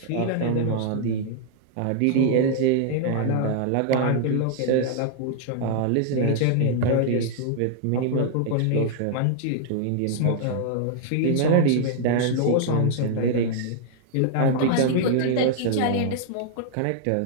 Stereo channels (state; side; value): different; both; correlation -0.01